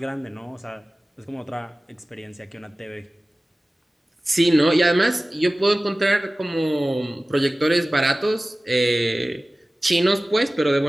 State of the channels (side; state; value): both; normal; correlation 0.97